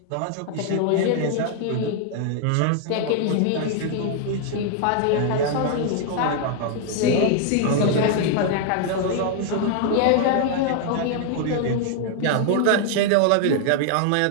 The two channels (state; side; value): different; both; correlation 0.00